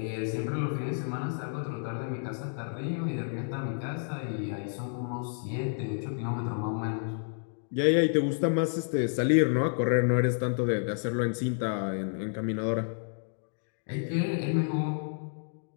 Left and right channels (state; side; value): silent; right; digital silence